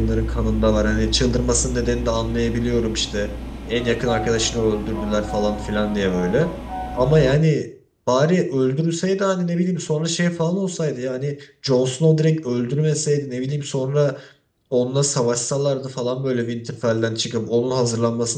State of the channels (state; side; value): identical; both; correlation 1.00